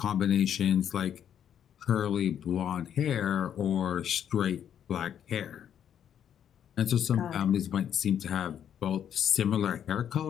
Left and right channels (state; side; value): quieter; right; 9.3 dB